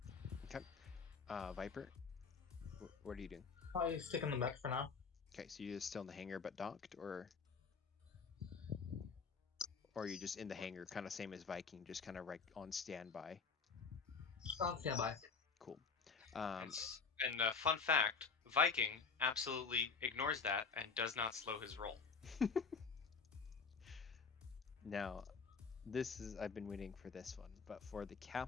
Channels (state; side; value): quieter; right; 5.3 dB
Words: Okay. Viper, what are you doing? Probably stick on the mech for now. Okay, so you're still in the hangar but docked, or are you just in the hangar, kind of same as Viking, just kind of right on standby? On standby. Cool. And fun fact, Viking absolutely ignores that and does not slow his roll. Now, I've been waiting for this one, but for the